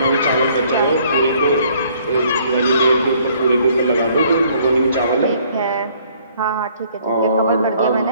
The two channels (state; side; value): inverted; both; correlation -0.62